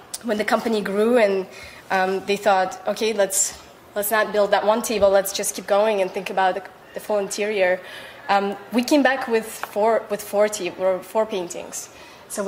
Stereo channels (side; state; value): both; identical; correlation 1.00